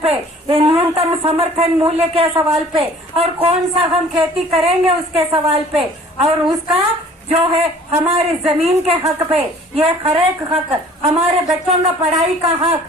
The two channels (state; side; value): normal; both; correlation 0.51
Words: पे, ये न्यूनतम समर्थन मूल्य के सवाल पे, और कौन सा हम खेती करेंगे उसके सवाल पे, और उसका जो है हमारी जमीन के हक पे, ये हर एक हक, हमारे बच्चों का पढ़ाई का हक,